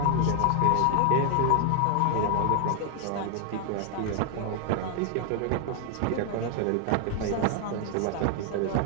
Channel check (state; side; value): different; both; correlation 0.01